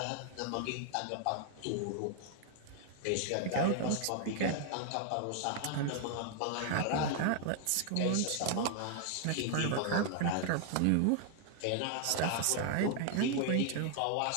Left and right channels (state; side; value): different; both; correlation 0.00